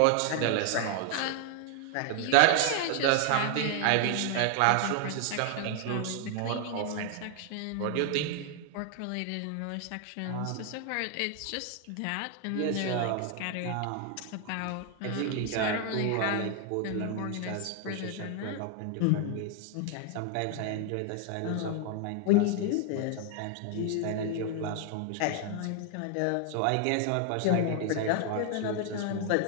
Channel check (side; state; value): both; different; correlation 0.00